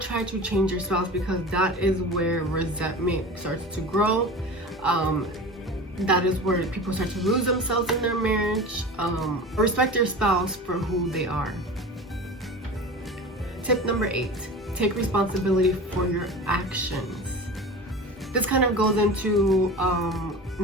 to change your spouse, because that is where resentment starts to grow. That is where people start to lose themselves in their marriage. Respect your spouse for who they are. Tip number 8, take responsibility for your actions. This kind of goes into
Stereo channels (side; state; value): both; normal; correlation 0.33